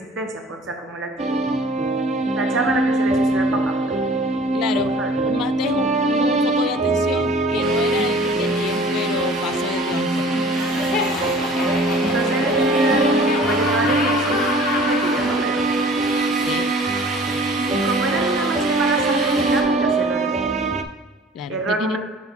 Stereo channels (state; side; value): normal; both; correlation 0.48